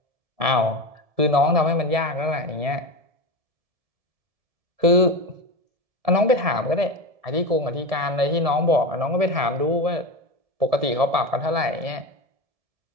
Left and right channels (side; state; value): left; late; 1.7 ms